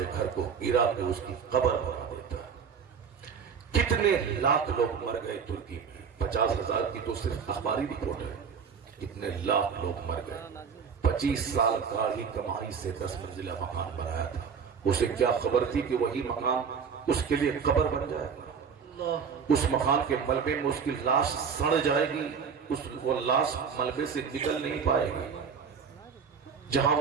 گھر کو گرا کے اس کی قبر بنا دیتا ہے۔ کتنے لاکھ لوگ مر گئے ترکی میں، 50,000 کی تو صرف اخباری رپورٹ ہے، کتنے لاکھ لوگ مر گئے۔ 25 سال کا ہی کمائی سے 10 منزلہ مکان بنایا تھا، اسے کیا خبر تھی کہ وہی مکان اس کے لیے قبر بن جائے گا، اس مکان کے ملبے میں اس کی لاش سڑ جائے گی، وہ لاش ملبے سے نکل نہیں پائے گی، جہاں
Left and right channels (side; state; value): left; quieter; 6.4 dB